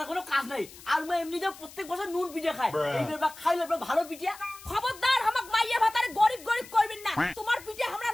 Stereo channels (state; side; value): noise; left; hiss, 18 dB below the sound